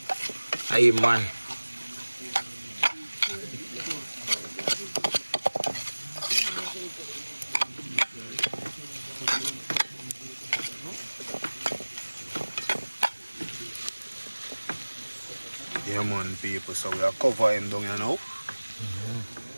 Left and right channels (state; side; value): inverted; both; correlation -1.00